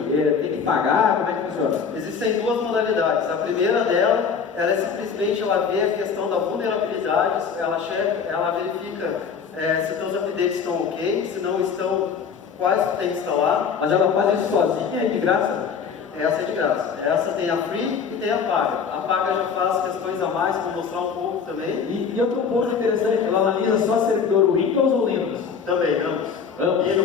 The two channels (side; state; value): right; quieter; 6.3 dB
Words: tem que pagar? Como é que funciona? Existem duas modalidades. A primeira dela, ela é simplesmente, ela vê a questão da vulnerabilidade, ela verifica se os teus updates estão ok, se não estão, quais tu tem que instalar. Mas ela faz isso sozinha e de graça? Essa é de graça. Essa tem a free e tem a paga. A paga já faz questões a mais, vou mostrar um pouco também. E outro ponto interessante, ela analisa só servidor Windows ou Linux? Também, ambos.